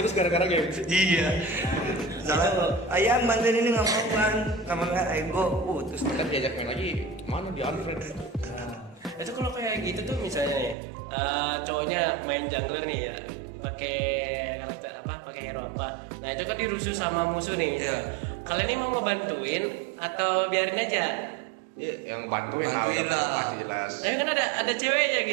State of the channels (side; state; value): left; drops out; at 10.8 s